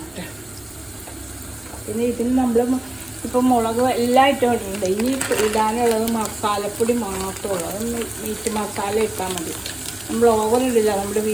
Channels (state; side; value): noise; right; hum, 28 dB below the sound